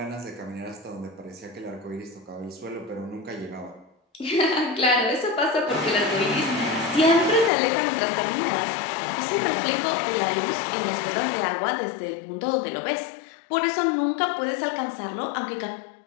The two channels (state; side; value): drops out; right; at 7.5 s